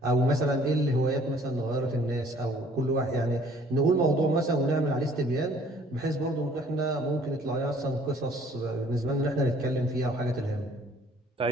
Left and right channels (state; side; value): normal; both; correlation 0.57